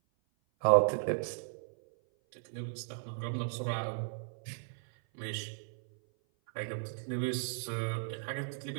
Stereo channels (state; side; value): silent; left; 54 dB below the other